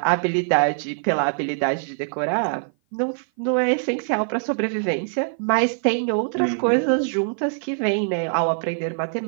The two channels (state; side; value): silent; left; 56 dB below the other